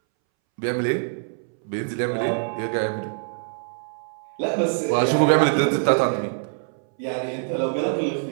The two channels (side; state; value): left; silent; 62 dB below the other